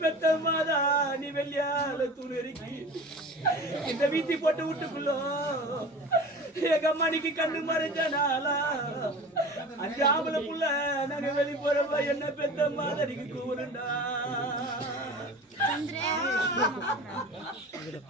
பெத்த மாதா நீ வெள்ளியால தூணி இந்த வீசி போட்டு வீட்டுக்குள்ள எங்க அம்மாக்கு கண்ணு மறைஞ்சனாலா அஞ்சு ஆம்பளை புள்ள நாங்க வெளி போறப்ப என்ன பெத்த மாதா நீங்க கூறுண்டா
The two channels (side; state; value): both; normal; correlation 0.36